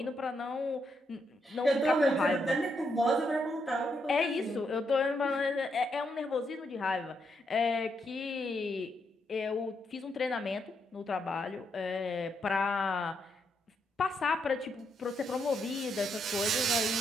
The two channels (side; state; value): both; normal; correlation 0.79